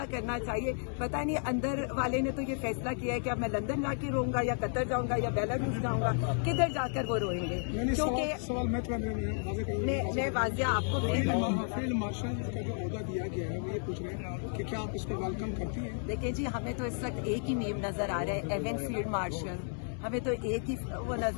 करना चाहिए। पता नहीं अंदर वाले ने तो ये फैसला किया है कि अब मैं लंदन जाके रोऊंगा या कतर जाऊंगा या बेलारूस जाऊंगा, किधर जाकर वो रोएंगे? क्योंकि मैं वाजिया आपको फील्ड मार्शल का जो ओहदा दिया गया है वो ये पूछ रहे हैं कि क्या आप इसको वेलकम करती हैं? देखिए जी हमें तो इस वक्त एक ही नेम नजर आ रहा है, एवन फील्ड मार्शल। हमें तो एक ही वो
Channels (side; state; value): right; silent; 56 dB below the other